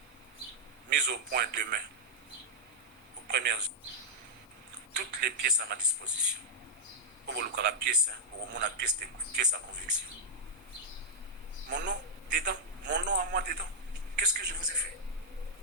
mise au point demain aux premières toutes les pièces à ma disposition. Pour la pièce, pour mon pièce à conviction. Mon nom dedans, mon nom à moi dedans. Qu'est-ce que je vous ai fait?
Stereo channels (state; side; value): normal; both; correlation -0.06